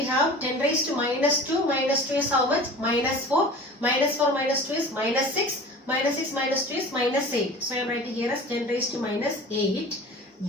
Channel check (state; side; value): normal; both; correlation 0.39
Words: have 10 raised to minus 2. Minus 2 is how much? Minus 4. Minus 4 minus 2 is minus 6. Minus 6 minus 2 is minus 8. So I am writing here as 10 raised to minus 8